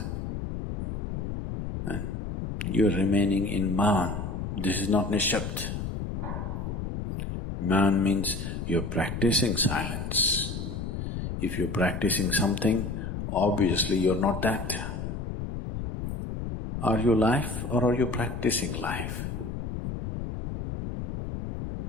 and you're remaining in man. This is not nishabd. Man means you're practicing silence. If you're practicing something, obviously you're not that. Are you life or are you practicing life?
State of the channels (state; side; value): noise; left; rumble, 5 dB below the sound